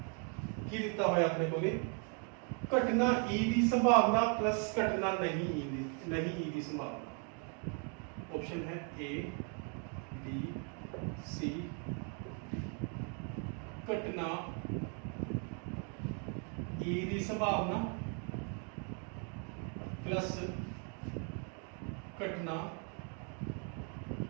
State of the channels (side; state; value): left; quieter; 39.7 dB